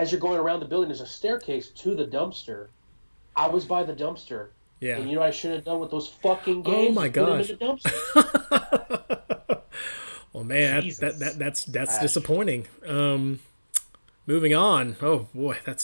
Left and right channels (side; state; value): both; inverted; correlation -1.00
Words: you're going around the building, there's a staircase to the dumpster. I was by the dumpster, Yeah. and what I should have done with those fucking Oh games my is put them in gosh. the dumpster. Well, man, Jesus. that's Trash. disappointing. Moving on. Oh boy,